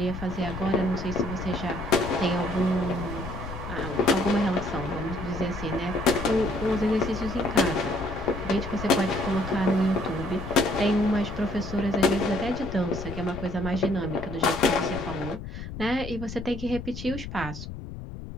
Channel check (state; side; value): noise; left; rumble, 9 dB below the sound